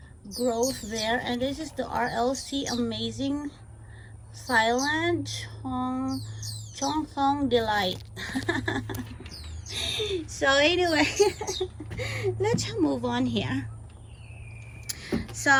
growth there. And this is the RLC Amazing Silent Chongthong Delight. So anyway, let's move on here.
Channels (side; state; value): both; identical; correlation 1.00